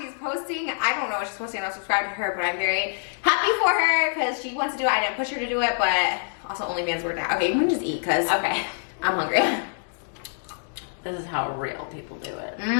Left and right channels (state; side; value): silent; right; digital silence